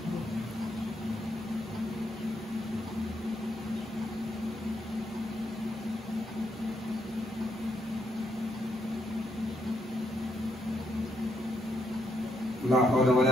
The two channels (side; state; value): both; normal; correlation 0.77